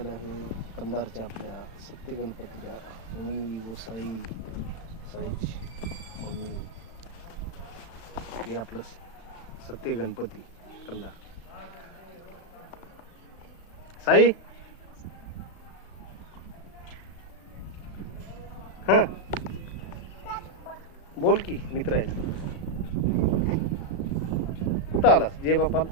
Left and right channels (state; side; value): late; right; 36 ms